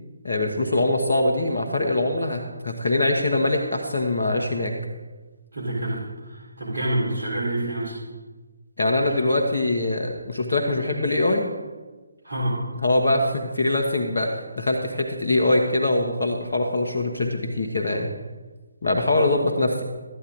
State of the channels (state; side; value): inverted; both; correlation -0.79